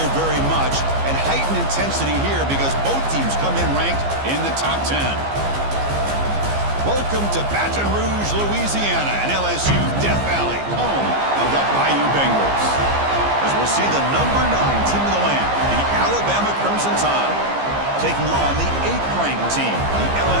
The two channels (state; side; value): late; left; 15 ms